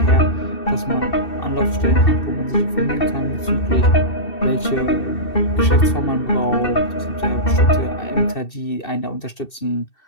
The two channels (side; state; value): right; late; 2.7 ms